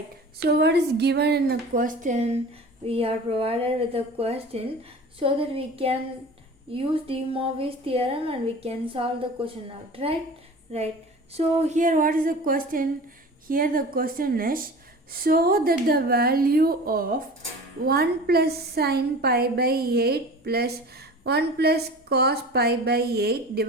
So what is given in the question? We are provided with a question so that we can use de Moivre's theorem and we can solve the question out, right? Right. So here what is the question? Here the question is so that the value of 1 plus sin pi by 8 plus 1 plus cos pi by 8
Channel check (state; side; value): normal; both; correlation 0.38